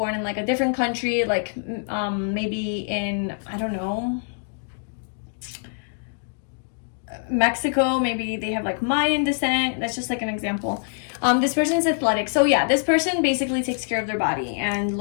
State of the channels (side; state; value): right; silent; digital silence